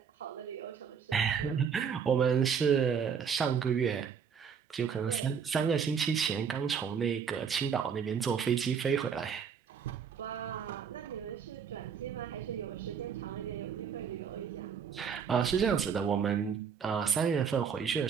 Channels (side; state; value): left; quieter; 6.9 dB